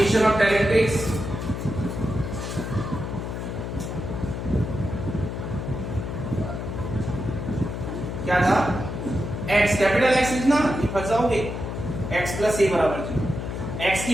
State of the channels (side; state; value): left; noise; hum, 5 dB below the sound